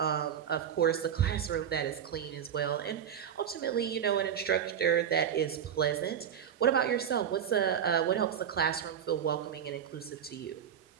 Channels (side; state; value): left; quieter; 8.7 dB